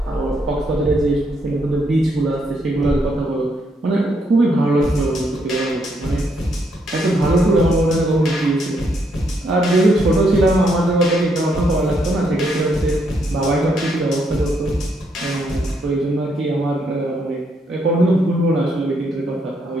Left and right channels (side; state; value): both; normal; correlation 0.75